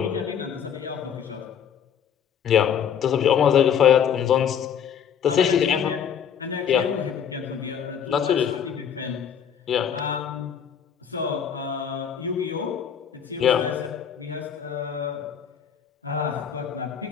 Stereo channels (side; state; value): right; quieter; 8.2 dB